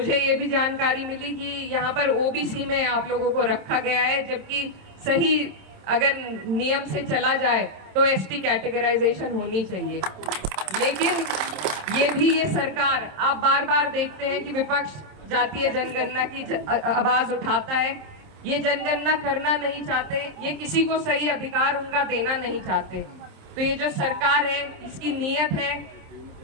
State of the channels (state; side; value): late; left; 26 ms